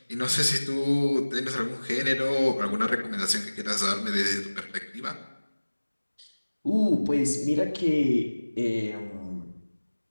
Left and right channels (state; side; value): inverted; both; correlation -1.00